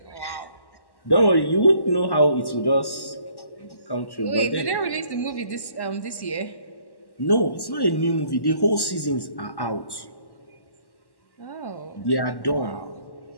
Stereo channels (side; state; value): right; late; 1.1 ms